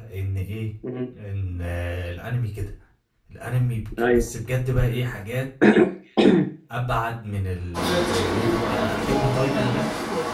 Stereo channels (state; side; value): identical; both; correlation 1.00